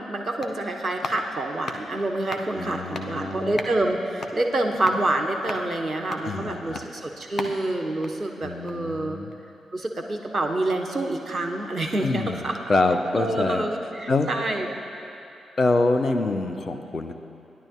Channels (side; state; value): both; normal; correlation 0.86